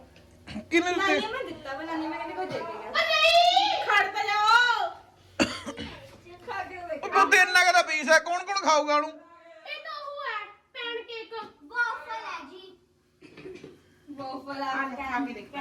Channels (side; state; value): both; identical; correlation 1.00